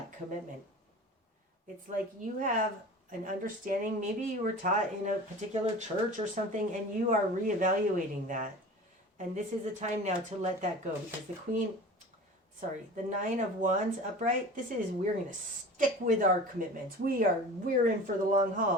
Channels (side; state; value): both; normal; correlation 0.37